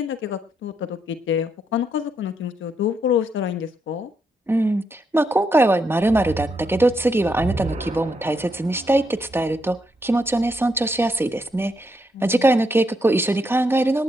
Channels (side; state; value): both; normal; correlation 0.78